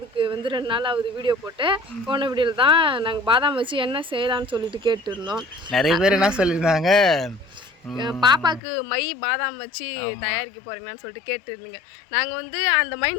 வந்து 2 நாள் ஆகுது வீடியோ போட்டு. போன வீடியோவில் தான் நாங்கள் பாதாம் வச்சு என்ன செய்யலாம்னு சொல்லிட்டு கேட்டுருந்தோம். நிறைய பேர் என்ன சொல்லியிருந்தாங்க, பாப்பாவுக்கு மை பாதாம் வச்சு தயாரிக்க போகிறீங்களான்னு சொல்லிட்டு கேட்டுருந்தீங்க. நாங்கள் வந்து அந்த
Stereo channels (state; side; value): drops out; right; at 8.6 s